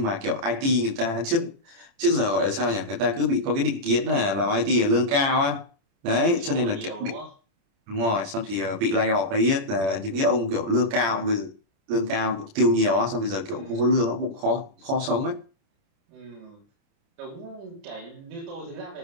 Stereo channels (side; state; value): left; late; 29 ms